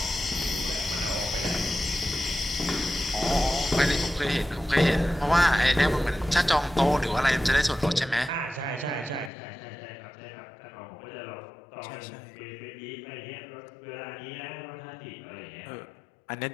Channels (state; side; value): drops out; right; at 9.3 s